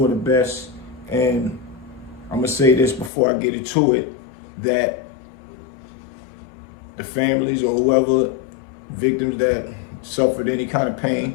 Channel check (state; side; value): drops out; right; at 3.1 s